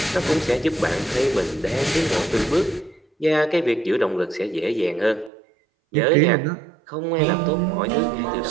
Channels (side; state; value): left; drops out; at 5.3 s